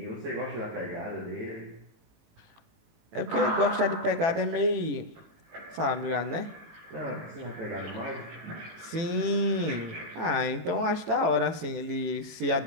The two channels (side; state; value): left; late; 18 ms